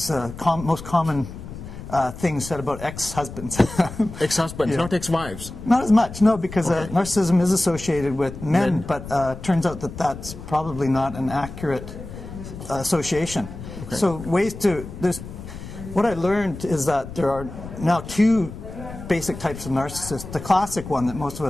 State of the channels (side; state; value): left; noise; rumble, 12 dB below the sound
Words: most common thing said about ex-husbands. Ex-husbands, Yeah. not ex-wives. Not as much, no, because Okay. narcissism is associated with men. But turns out that that's probably not an accurate association. Okay. So what I learned is that there are now two basic types of narcissists. The classic one that most of